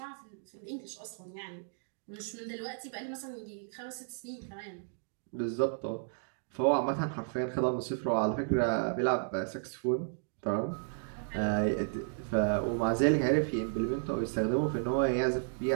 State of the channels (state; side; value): silent; left; digital silence